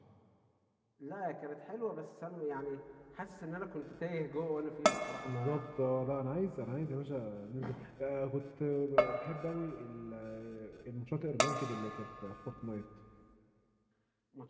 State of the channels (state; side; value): identical; both; correlation 1.00